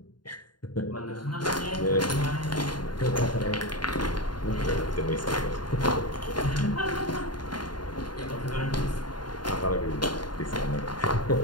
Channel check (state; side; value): late; right; 0.71 ms